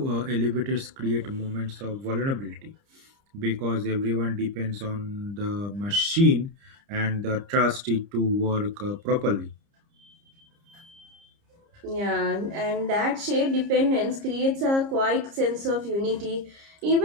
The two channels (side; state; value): left; late; 30 ms